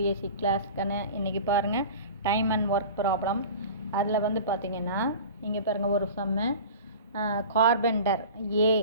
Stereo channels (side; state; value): both; inverted; correlation -0.37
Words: class. இன்றைக்கி பாருங்கள், டைம் அண்ட் ஒர்க் ப்ராப்ளம். அதில் பார்த்தீங்கன்னா இங்கே பாருங்கள், ஒரு சம்மு. Carpenter a